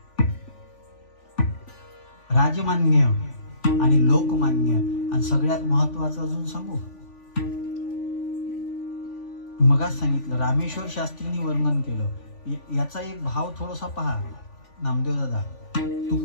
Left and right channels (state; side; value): late; right; 3.5 ms